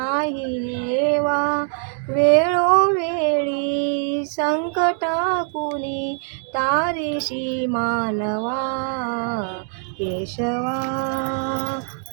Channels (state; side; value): silent; left; 61 dB below the other